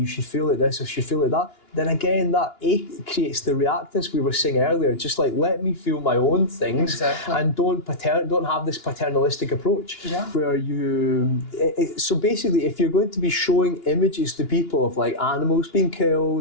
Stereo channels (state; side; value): late; right; 2.9 ms